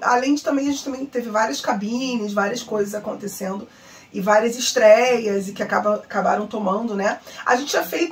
de também, a gente também teve várias cabines, várias coisas acontecendo. E várias estreias e que acabaram tomando, né? A gente tinha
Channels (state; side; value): identical; both; correlation 1.00